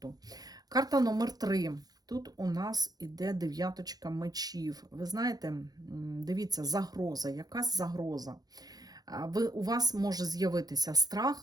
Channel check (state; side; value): late; left; 0.19 ms